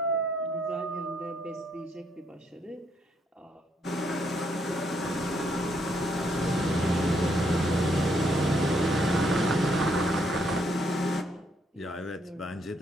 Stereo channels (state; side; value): normal; both; correlation 0.73